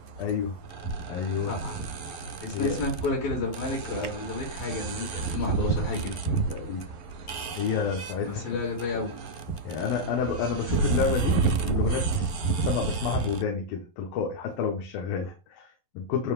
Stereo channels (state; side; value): late; right; 11 ms